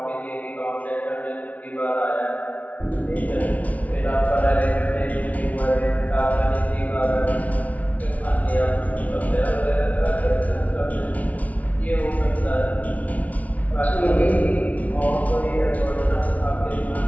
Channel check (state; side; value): late; right; 0.070 ms